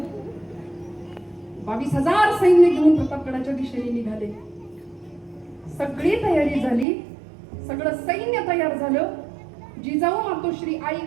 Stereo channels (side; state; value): left; drops out; at 6.9 s